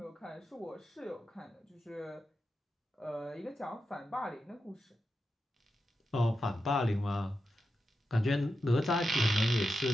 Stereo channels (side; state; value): both; normal; correlation 0.88